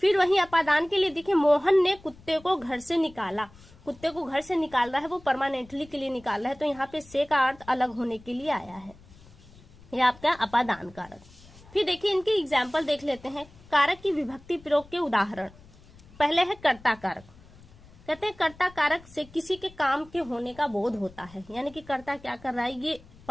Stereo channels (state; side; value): noise; left; rumble, 23 dB below the sound